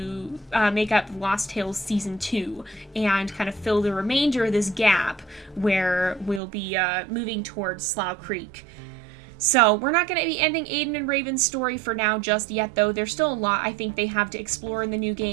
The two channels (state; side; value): drops out; left; at 6.4 s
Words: make up Lost Tales Season 2 and kind of fill the remainder of this gap where we'll be moving towards Slough Creek. So we're not going to be ending Aden and Raven's story for now just yet, though. There's still a lot I think they have to explore in the new